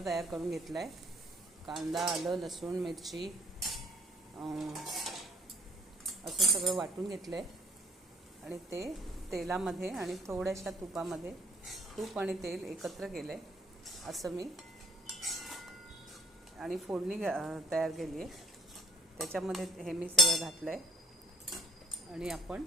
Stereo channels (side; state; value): both; normal; correlation 0.57